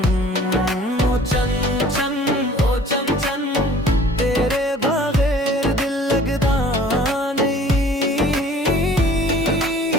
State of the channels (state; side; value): normal; both; correlation 0.51